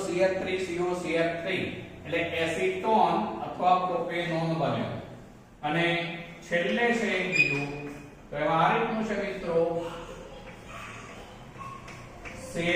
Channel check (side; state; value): both; identical; correlation 1.00